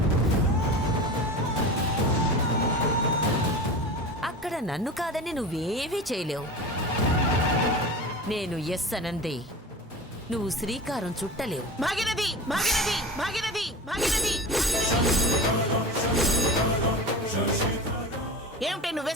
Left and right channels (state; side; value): normal; both; correlation 0.32